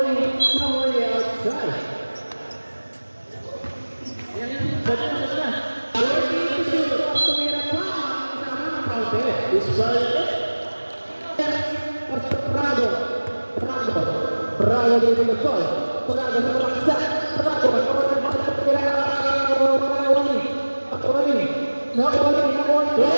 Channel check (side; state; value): both; inverted; correlation -1.00